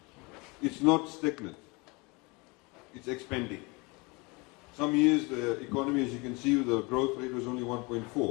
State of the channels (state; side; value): quieter; right; 27.1 dB